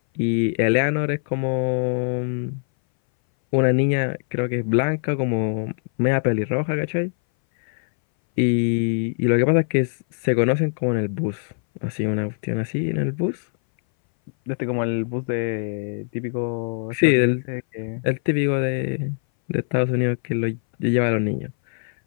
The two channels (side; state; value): right; silent; 60 dB below the other